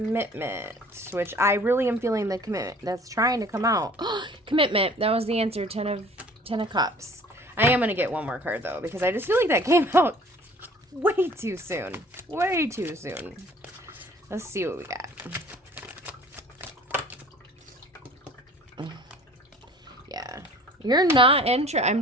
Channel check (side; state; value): both; normal; correlation 0.50